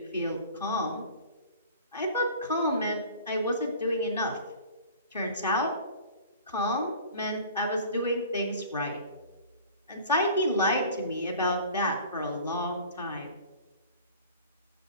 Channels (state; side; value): inverted; both; correlation -0.43